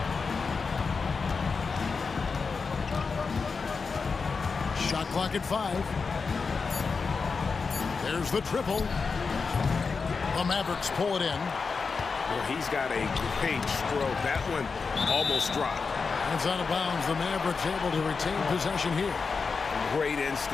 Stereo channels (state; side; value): quieter; right; 4.9 dB